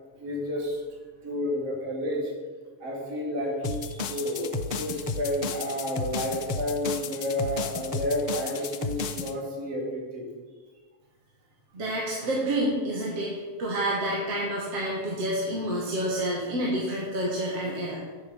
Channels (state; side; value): late; left; 6.8 ms